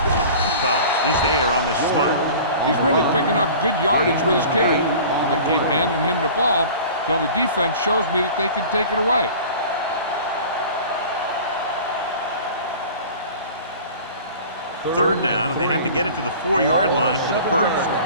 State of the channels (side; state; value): both; inverted; correlation -0.41